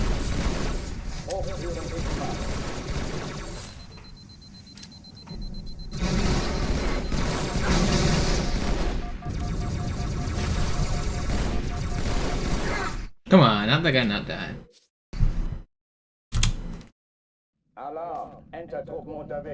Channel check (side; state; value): both; identical; correlation 1.00